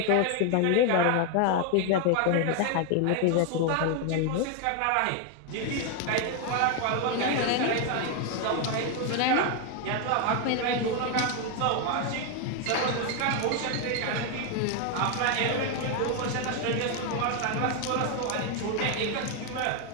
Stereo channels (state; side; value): different; both; correlation 0.01